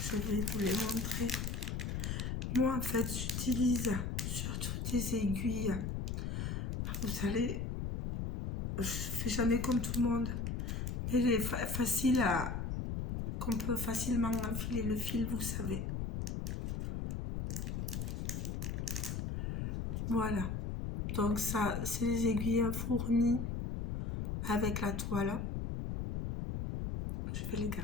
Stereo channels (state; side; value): noise; left; rumble, 2 dB below the sound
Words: Je vais vous les montrer. Moi, en fait, j'utilise surtout des aiguilles. Vous savez, je fais jamais comme tout le monde. Mais il est facile à... qu'on peut facilement enfiler le fil, vous savez. Voilà. Donc ça, c'est les aiguilles fournies avec la toile. Je vais les